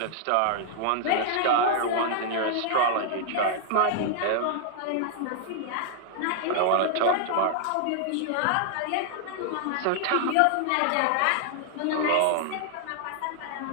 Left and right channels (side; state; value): both; different; correlation -0.01